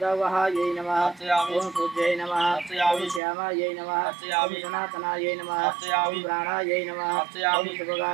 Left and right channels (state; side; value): drops out; left; at 3.2 s